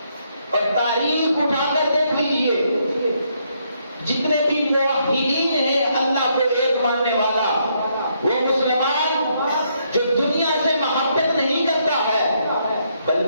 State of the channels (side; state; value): both; inverted; correlation -0.74